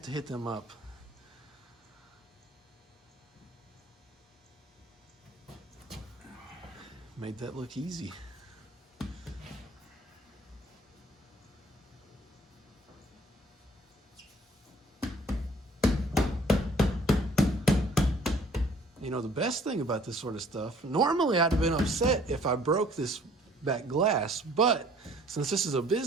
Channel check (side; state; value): both; normal; correlation 0.56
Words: to hit them up. Made that look easy. You know, the best thing about this sort of stuff, normally I'd have been upset if I broke this back glass, but since this is a